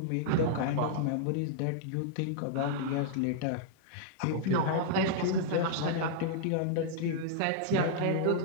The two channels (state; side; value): different; both; correlation -0.01